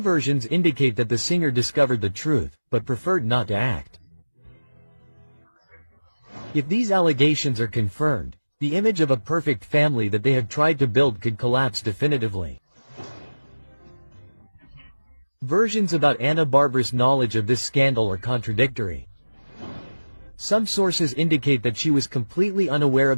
versions indicate that the singer discovered the truth, but preferred not to act. If these allegations are confirmed, the image of a perfect family that they have tried to build could collapse definitively. Versions about Ana Bárbara's knowledge of this scandal are contradictory. Some sources indicate that she was completely unaware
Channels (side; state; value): both; inverted; correlation -1.00